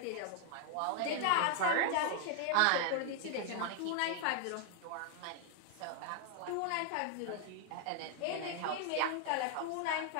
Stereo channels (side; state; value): both; different; correlation 0.00